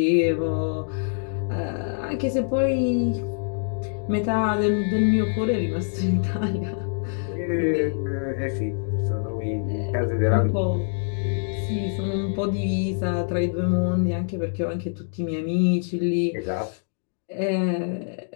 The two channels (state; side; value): silent; right; digital silence